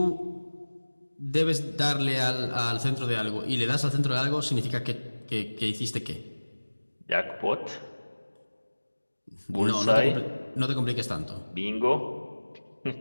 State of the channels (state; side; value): inverted; both; correlation -1.00